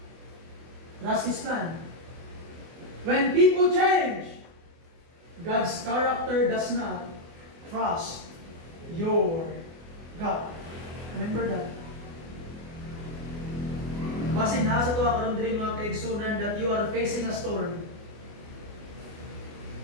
trust His plan. When people change, God's character does not trust your God. Remember that. Basin na sa tuwa karon diri mga kaigsunan that you are facing a storm.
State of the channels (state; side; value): late; left; 24 ms